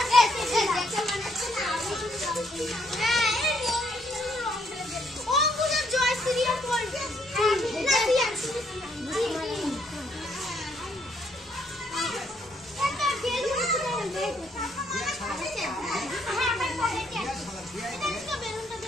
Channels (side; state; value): both; normal; correlation 0.71